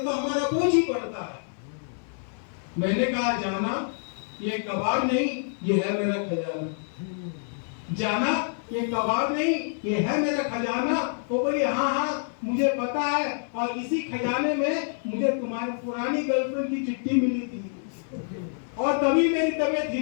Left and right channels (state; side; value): silent; right; 58 dB below the other